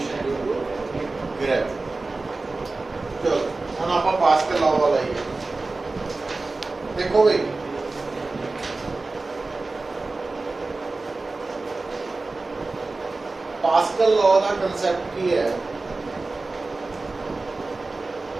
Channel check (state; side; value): quieter; left; 3.5 dB